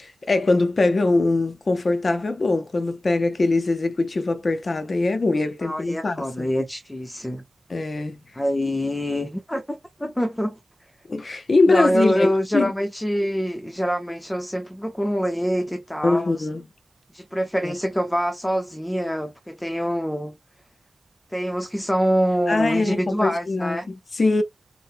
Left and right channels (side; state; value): both; normal; correlation 0.97